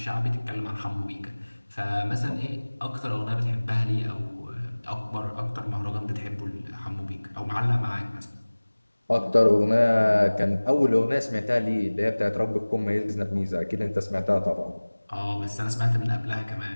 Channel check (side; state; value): both; inverted; correlation -1.00